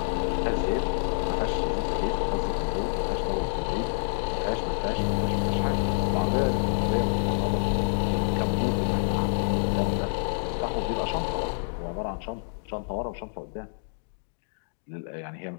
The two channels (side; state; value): right; silent; digital silence